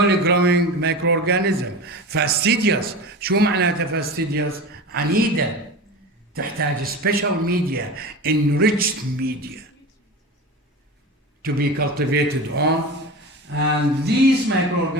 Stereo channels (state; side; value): normal; both; correlation 0.29